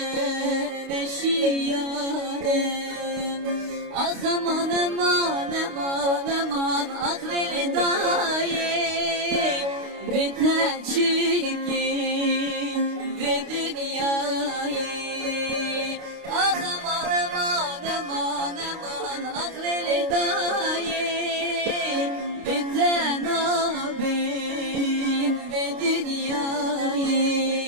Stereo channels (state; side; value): late; left; 29 ms